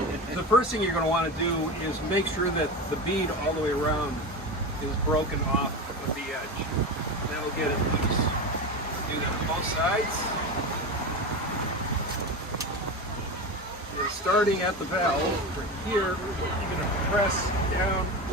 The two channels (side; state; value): both; normal; correlation 0.22